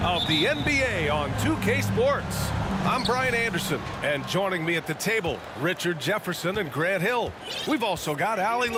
of the NBA on 2K Sports. I'm Brian Anderson, and joining me at the table, Richard Jefferson and Grant Hill. We've also got Allie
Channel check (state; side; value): identical; both; correlation 1.00